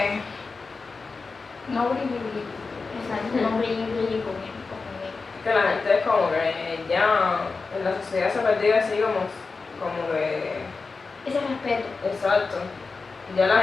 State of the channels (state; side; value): quieter; right; 4.3 dB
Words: No brilli. exacto, no brille conmigo. Que la gente es como que ya en la sociedad se ha perdido así como que... Ese respeto. Exacto. Ya la